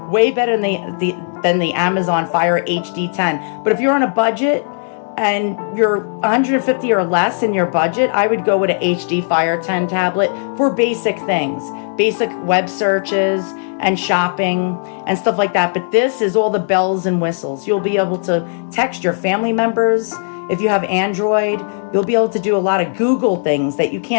Way better than the Amazon Fire HD 10. But if you're on a budget and you're 150 or less in your budget, I would go with an HD Fire 10 tablet for basic things, basic web searches and shopping and stuff like that. But this is all the bells and whistles. You'll be able to text your family members. If you have Android, you'll be able to do a lot of Google things that you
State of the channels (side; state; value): right; silent; digital silence